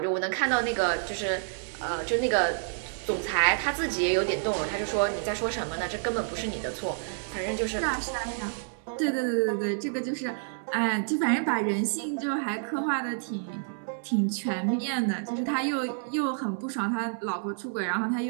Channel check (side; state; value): left; silent; digital silence